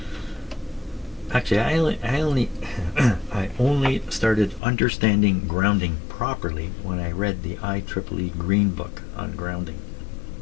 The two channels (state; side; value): drops out; right; at 4.6 s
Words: Actually, I only started understanding grounding properly when I read the IEEE Green Book on grounding.